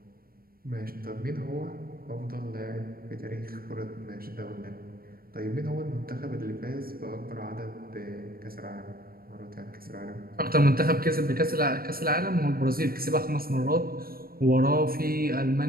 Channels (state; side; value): late; left; 0.43 ms